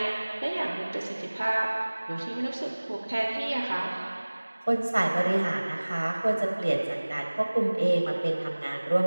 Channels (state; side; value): inverted; both; correlation -1.00